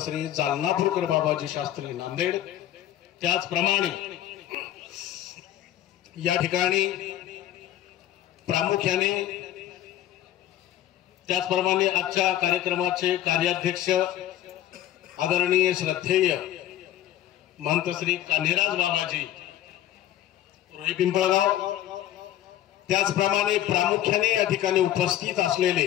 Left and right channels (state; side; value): quieter; right; 12.5 dB